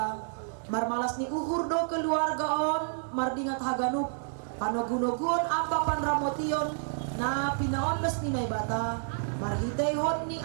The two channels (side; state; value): left; silent; digital silence